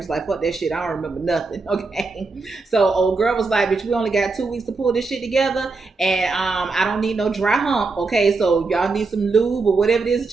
like, fuck that shit, I don't remember nothing. Okay, so old girl was like, bitch, we only got 2 weeks to pull this shit together, and I don't need no dry hump. Okay, so y'all need some lube or whatever it is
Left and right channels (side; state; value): left; quieter; 4.0 dB